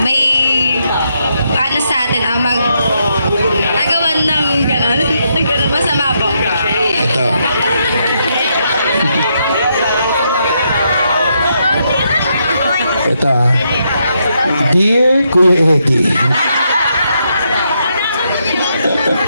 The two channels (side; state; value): both; inverted; correlation -0.78